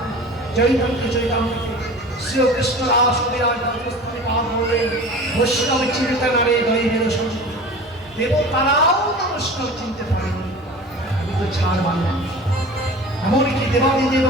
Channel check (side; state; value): both; normal; correlation 0.38